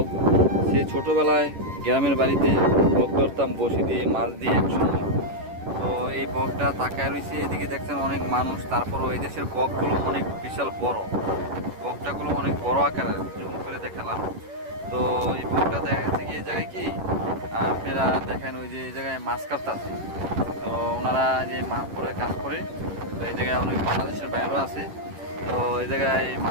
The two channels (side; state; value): left; late; 11 ms